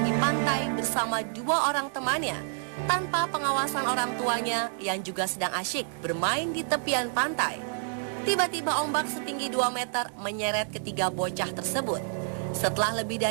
di pantai bersama dua orang temannya, tanpa pengawasan orang tuanya yang juga sedang asyik bermain di tepian pantai. Tiba-tiba ombak setinggi 2 meter menyeret ketiga bocah tersebut. Setelah lebih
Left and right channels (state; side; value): silent; left; digital silence